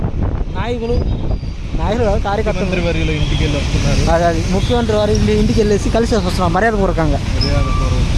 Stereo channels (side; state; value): both; identical; correlation 1.00